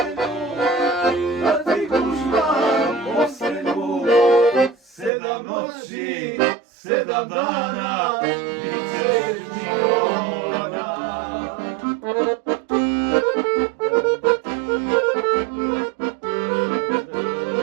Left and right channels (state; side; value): drops out; left; at 5.1 s